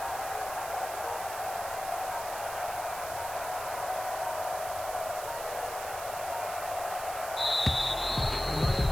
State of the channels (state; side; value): noise; right; hiss, 9 dB below the sound